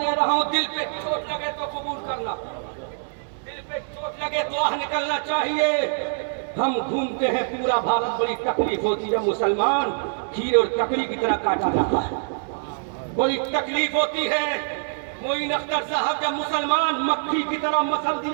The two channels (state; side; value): silent; left; digital silence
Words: رہا ہوں دل پہ چوٹ لگے تو قبول کرنا، دل پہ چوٹ لگے تو آہ نکلنا چاہیے۔ ہم گھومتے ہیں پورا بھارت، بڑی تکلیف ہوتی ہے، مسلمان کھیرے اور ککڑی کی طرح کاٹا جاتا ہے، بڑی تکلیف ہوتی ہے۔ معین اختر صاحب جب مسلمان مکھی کی طرح مسل